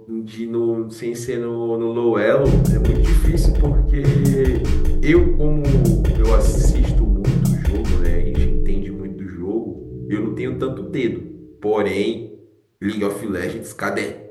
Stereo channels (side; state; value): both; identical; correlation 1.00